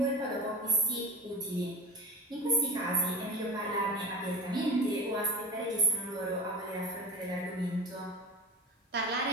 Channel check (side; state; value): both; normal; correlation 0.30